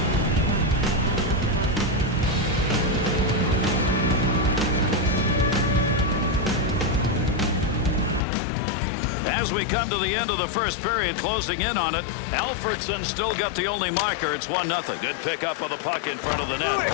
As we come to the end of the first period, closing in on it, Alfredson still got the only marker. It's 1-0. Good pickup of the puck in front of the net.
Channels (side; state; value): right; drops out; at 8.2 s